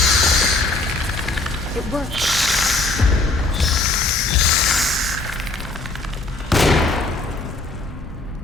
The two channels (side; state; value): right; quieter; 3.1 dB